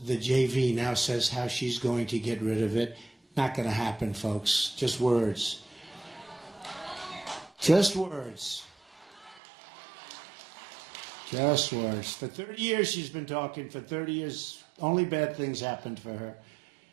the JV now says how she's going to get rid of it. Not going to happen, folks. Just words. Just words. Just words. For 30 years she's been talking. For 30 years, only bad things happened for her.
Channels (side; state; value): left; drops out; at 9.4 s